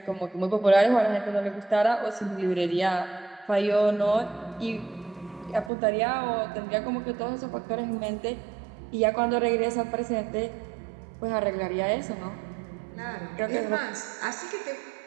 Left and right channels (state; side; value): drops out; left; at 5.7 s